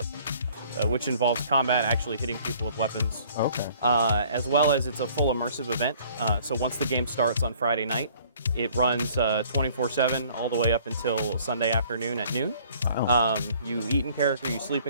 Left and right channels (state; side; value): inverted; both; correlation -0.56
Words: which involves combat, actually hitting people with weapons. Okay. As well as it's a full immersive event. So once the game starts on Friday night, it runs 24/7 all the way up until Sunday afternoon at noon. Wow. You eat in character, you sleep